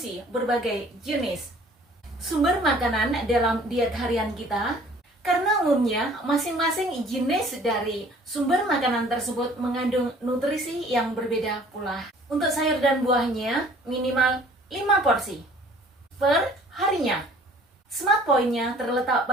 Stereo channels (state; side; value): normal; both; correlation 0.53